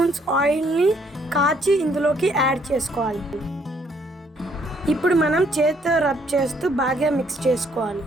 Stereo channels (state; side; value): normal; both; correlation 0.67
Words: ఆయిల్ని కాచి ఇందులోకి యాడ్ చేసుకోవాలి. ఇప్పుడు మనం చేతితో రబ్ చేస్తూ బాగా మిక్స్ చేసుకోవాలి.